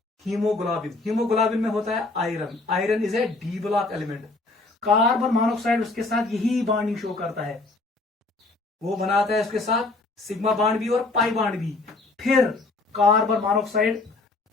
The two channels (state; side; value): quieter; right; 3.3 dB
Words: हीमोग्लोबिन में होता है iron is A D block element. Carbon monoxide उसके साथ यही बॉन्डिंग शो करता है, वो बनाता है उसके साथ सिग्मा बॉन्ड भी और पाई बॉन्ड भी। फिर कार्बन मोनोऑक्साइड